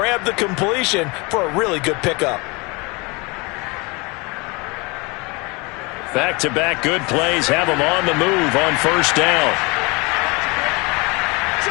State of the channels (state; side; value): quieter; right; 27.3 dB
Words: the completion for a really good pickup. Back-to-back good plays have him on the move on first down.